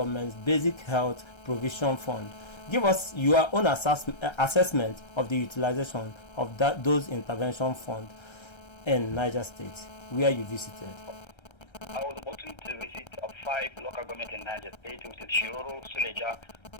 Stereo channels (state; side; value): late; right; 1.3 ms